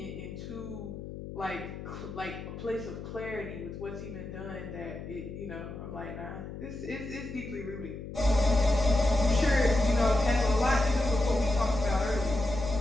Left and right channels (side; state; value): left; noise; hum, 10 dB below the sound